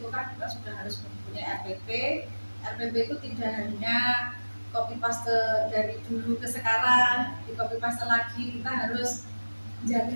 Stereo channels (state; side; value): inverted; both; correlation -1.00